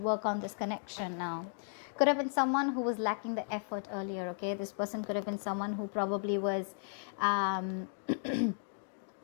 on this connection now. Could have been someone who was lacking the effort earlier, okay? This person could have been someone who probably was...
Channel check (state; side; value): silent; right; digital silence